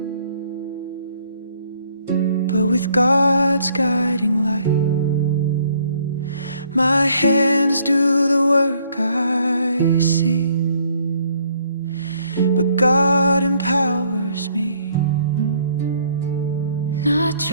but with God's guiding light. My hands do the work I see, but God empowers me. Not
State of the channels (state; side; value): inverted; both; correlation -0.64